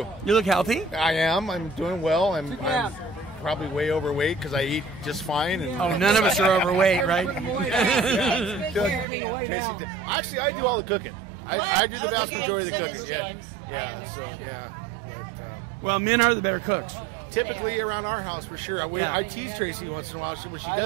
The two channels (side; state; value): left; drops out; at 9.1 s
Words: You look healthy. I am. I'm doing well. I'm probably way overweight because I eat just fine. And none of us are overweight, right? Tracy, actually, I do all the cooking. I do the vast majority of the cooking. Yeah. So yeah. But, well, men are the better cooks. Typically around our house, for sure. I tease Tracy once in a while. When she